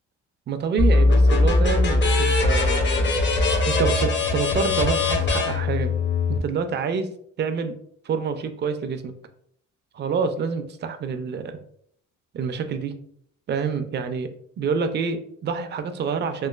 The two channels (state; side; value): normal; both; correlation 0.54